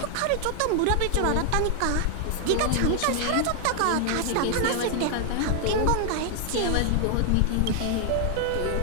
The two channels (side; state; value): both; different; correlation 0.00